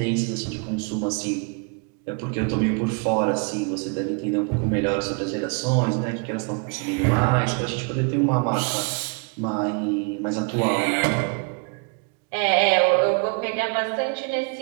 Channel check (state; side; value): quieter; left; 34.8 dB